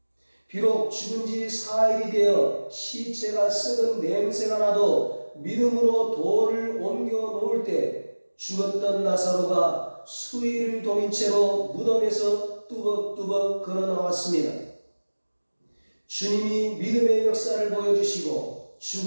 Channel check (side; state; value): both; inverted; correlation -1.00